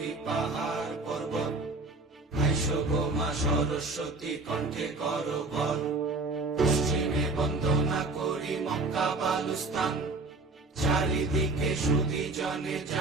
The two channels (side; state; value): left; quieter; 3.3 dB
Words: পাহাড় পর্বত, আইসো গো মা সরস্বতী কণ্ঠে করো বল। পশ্চিমে বন্দনা করি মক্কা বালুস্তান, চারিদিকে সুধী জনে